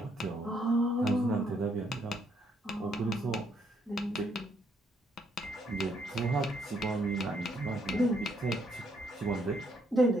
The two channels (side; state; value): both; normal; correlation 0.72